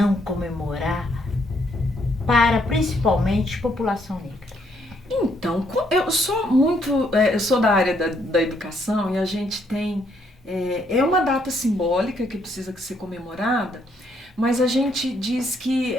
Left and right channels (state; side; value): normal; both; correlation 0.71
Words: comemorar para principalmente a população negra. Então, eu sou da área da educação e a gente tem, uma data simbólica que precisa ser comemorada, mas a gente diz que